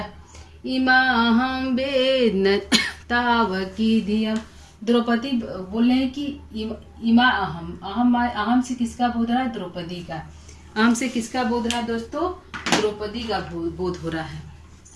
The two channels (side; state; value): both; identical; correlation 1.00